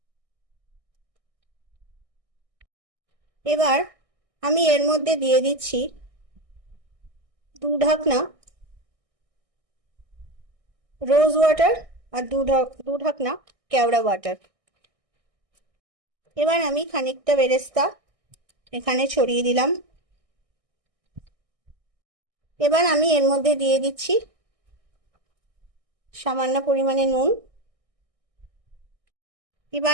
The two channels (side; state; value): left; late; 1.6 ms